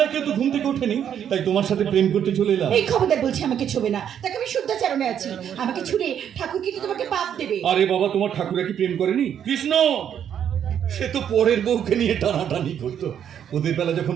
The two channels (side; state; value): left; quieter; 9.1 dB